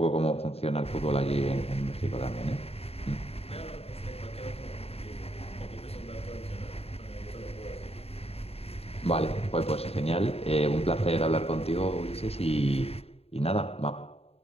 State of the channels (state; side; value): late; right; 0.29 ms